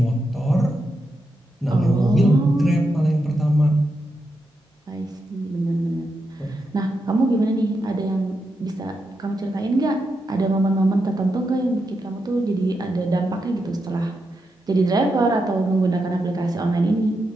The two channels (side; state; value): both; normal; correlation 0.85